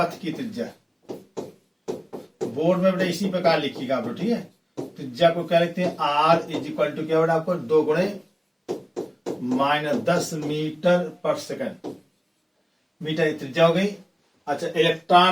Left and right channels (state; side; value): identical; both; correlation 1.00